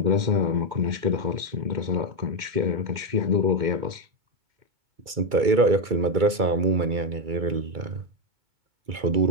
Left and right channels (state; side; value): late; left; 2.3 ms